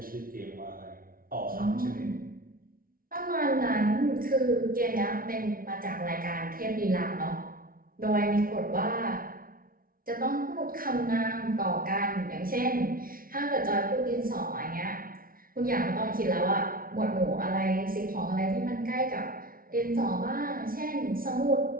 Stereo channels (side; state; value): left; late; 0.42 ms